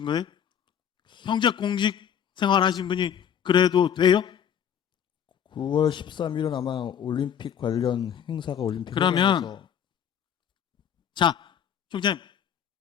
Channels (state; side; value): quieter; right; 8.7 dB